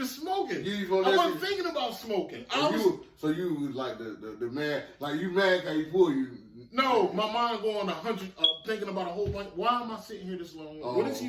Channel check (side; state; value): both; identical; correlation 1.00